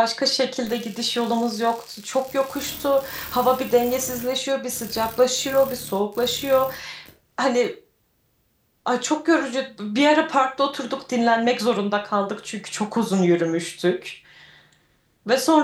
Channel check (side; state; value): both; identical; correlation 1.00